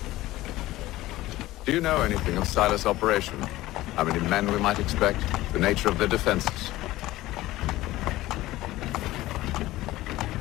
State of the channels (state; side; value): quieter; right; 17.0 dB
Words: Do you know anything of Silas' operation? How many men we might expect? The nature of their defenses?